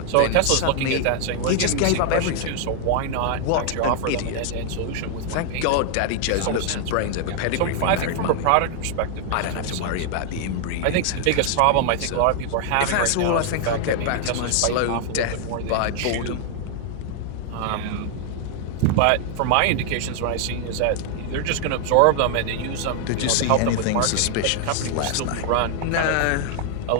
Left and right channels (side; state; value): both; different; correlation 0.00